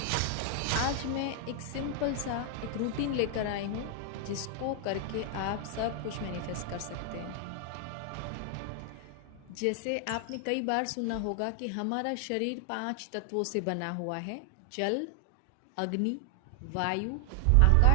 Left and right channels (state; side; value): different; both; correlation 0.00